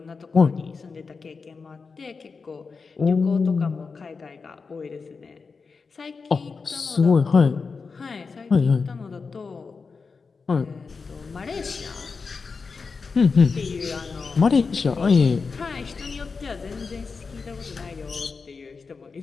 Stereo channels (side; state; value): right; quieter; 4.8 dB